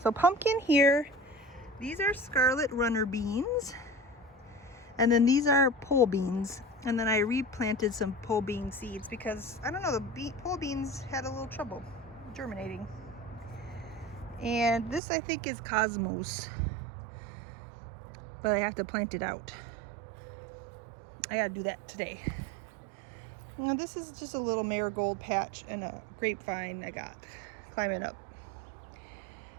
pumpkin here, these are scarlet runner beans, and then these are pole beans, and then I replanted some pole bean seeds because I don't know, the pole beans had a little trouble germinating. And this I think is Cosmos, but I have to plant it out. I gotta do that today. Now this is just a little marigold patch and a grapevine I got climbing up.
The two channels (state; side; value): drops out; left; at 15.0 s